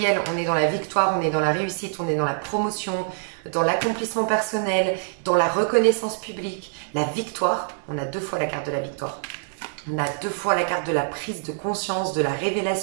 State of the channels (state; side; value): silent; left; digital silence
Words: on est dans la victoire, on est dans la réussite, on est dans la promotion, dans l'accomplissement personnel, dans la reconnaissance publique, la victoire. On a 2 fois la carte de la victoire. On a 2 fois la carte de la prise de conscience, de la